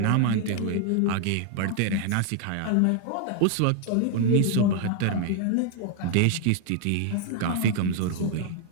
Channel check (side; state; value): both; different; correlation 0.00